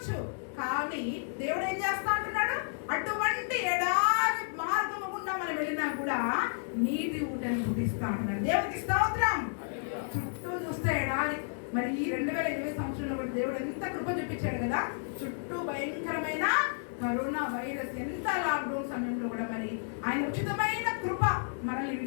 కానీ దేవుడు ఏం చేస్తా అంటున్నాడు? అటువంటి ఎడారి మార్గము గుండా మనం వెళ్ళినా కూడా నీటి ఊటను పుట్టిస్తా అంటున్నాడు. దేవునికి స్తోత్రం. చుట్టూ చూస్తే ఎడారి. మరి ఈ 2020 సంవత్సరంలో కూడా దేవుడు ఎంత కృప చూపించాడు కదా. చుట్టూ భయంకరమైన కరోనా వైరస్, ఎంత లాక్డౌన్ సమయంలో కూడా మరి ఆయన ఉచితమైన కృప మనల్ని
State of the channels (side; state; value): right; silent; digital silence